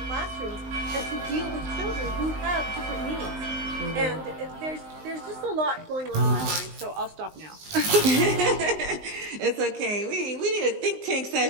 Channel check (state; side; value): late; left; 19 ms